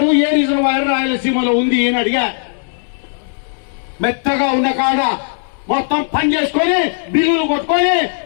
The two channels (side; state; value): right; silent; digital silence